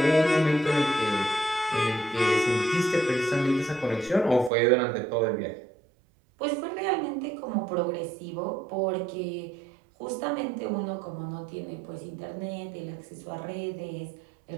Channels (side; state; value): left; drops out; at 4.5 s